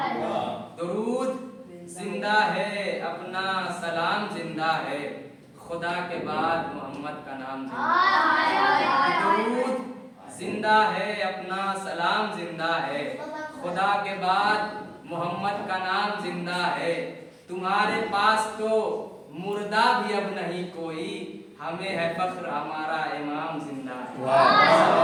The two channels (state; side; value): identical; both; correlation 1.00